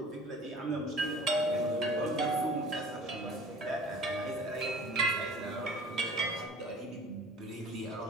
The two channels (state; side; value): normal; both; correlation 0.45